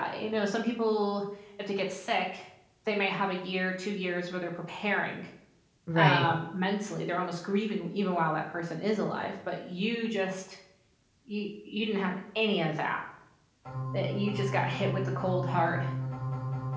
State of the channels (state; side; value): identical; both; correlation 1.00